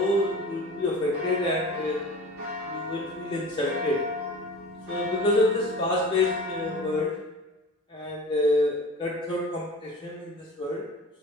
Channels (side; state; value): both; normal; correlation 0.37